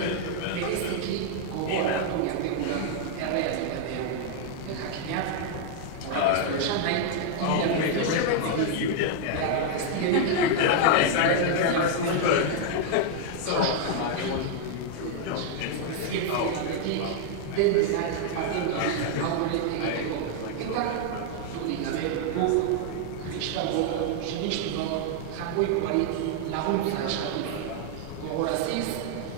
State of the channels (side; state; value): both; different; correlation 0.00